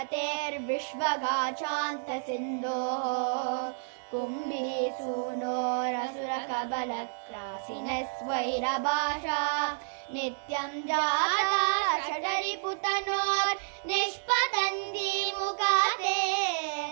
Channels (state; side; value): silent; left; digital silence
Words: कुम्भीसूनोरसुरकबलक्रासिनस्वैरभाषा नित्यं जाता षडरिपुतनोर्निष्पतन्ती मुखाते